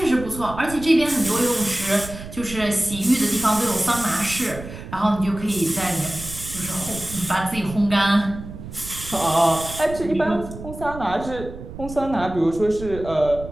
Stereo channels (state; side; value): noise; right; rumble, 12 dB below the sound